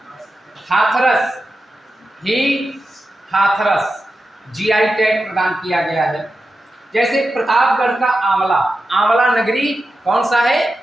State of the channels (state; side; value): normal; both; correlation 0.91